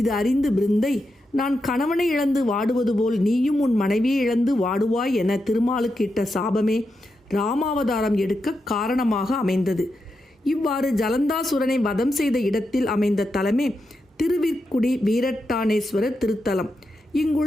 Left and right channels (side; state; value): both; normal; correlation 0.86